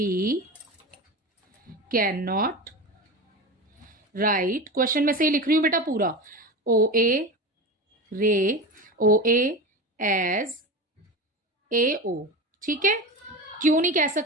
can not write, question में से ही लिख रही हूं बेटा पूरा, OA रे OA एज AO, ठीक है। क्यों नहीं कह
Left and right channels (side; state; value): both; normal; correlation 0.26